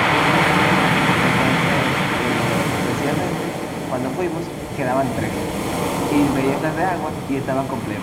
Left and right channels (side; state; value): both; identical; correlation 1.00